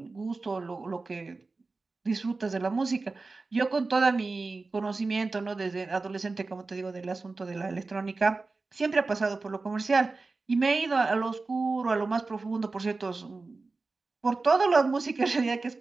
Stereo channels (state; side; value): quieter; left; 3.8 dB